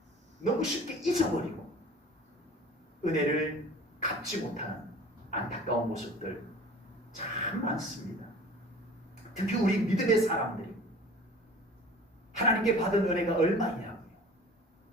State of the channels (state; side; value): normal; both; correlation 0.44